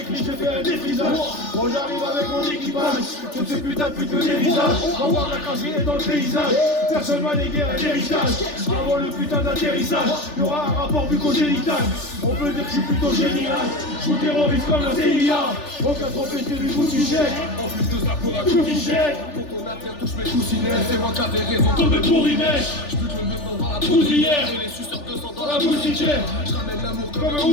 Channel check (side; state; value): right; late; 3.4 ms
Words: clips, j'ai fait un défrisage. Bon j'arrive avec mon équipage. Toutes ces putains de putes me dévisagent. On voit la craserie est dans le paysage. Personne m'a légué un héritage. Avant le putain d'atterrissage, y'aura un rapport bucogénital. On peut dire que je suis plutôt génial. Je vous terrorise comme la CIA. Aucun trophée du coup tu jettes. En plus de ça, pour un Tout qui jette. pour ton affaire, touche mes coussinets. C'est moi qui avais raison. Comme le bourrinet. Je bute le mieux dans la Poudrière. Et les suceurs de sang dans La la moustiquaire. Je ramène l'amour Comme comme un un